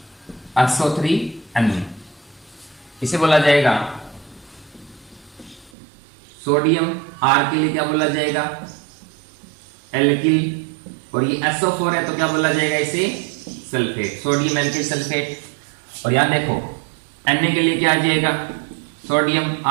SO3 अन्य। इसे बोला जाएगा सोडियम, R के लिए क्या बोला जाएगा, एल्किल, और ये SO4 है तो क्या बोला जाएगा इसे, सल्फेट, सोडियम एल्किल सल्फेट। और यहां देखो Na के लिए क्या आ जाएगा, सोडियम,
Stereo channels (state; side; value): drops out; left; at 5.7 s